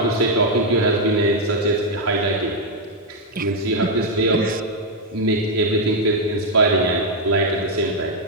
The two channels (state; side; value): normal; both; correlation 0.00